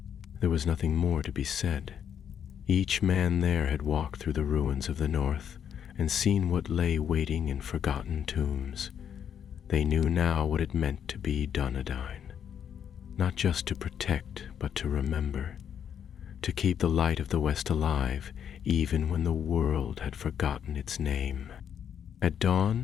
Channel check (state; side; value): quieter; right; 8.5 dB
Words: There was nothing more to be said. Each man there had walked through the ruins of the North and seen what lay waiting in forgotten tombs. They knew now what it meant to be Dúnedain, not just to protect, but to remember, to keep the light of the West alive, even when the world had forgotten its name. At